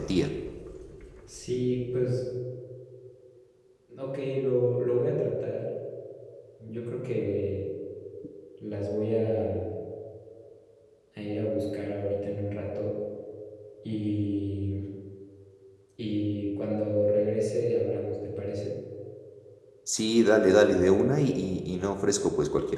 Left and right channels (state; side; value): identical; both; correlation 1.00